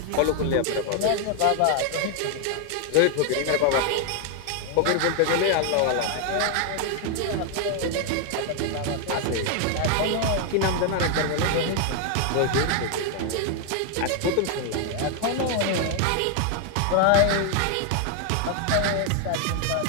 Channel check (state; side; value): different; both; correlation 0.00